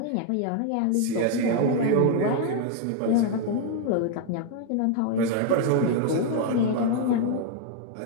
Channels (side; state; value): both; different; correlation 0.00